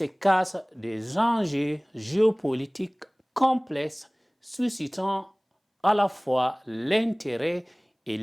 cachent des enjeux géopolitiques complexes suscitant à la fois l'intérêt et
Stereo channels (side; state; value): both; identical; correlation 1.00